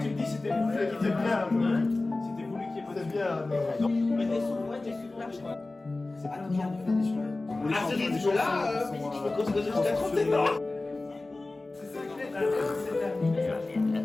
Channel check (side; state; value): right; quieter; 3.1 dB